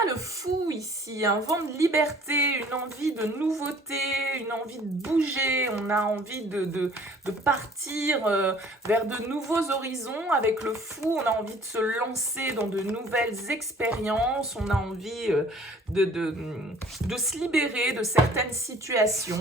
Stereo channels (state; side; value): normal; both; correlation 0.53